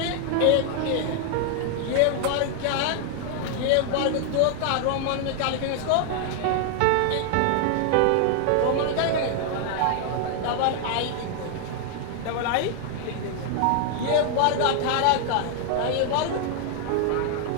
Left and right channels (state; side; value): different; both; correlation 0.00